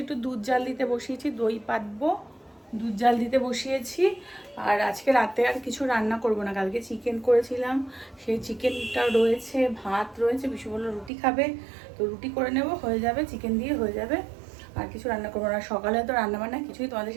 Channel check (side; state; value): left; drops out; at 11.1 s